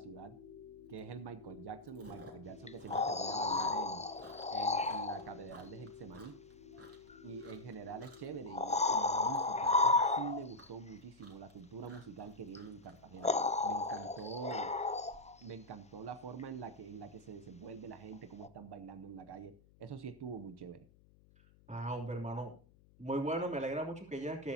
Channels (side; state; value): left; noise; hum, 26 dB below the sound